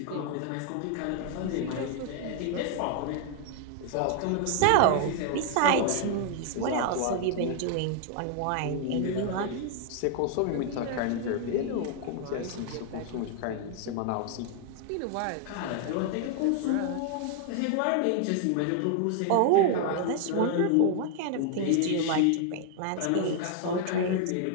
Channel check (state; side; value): different; both; correlation 0.00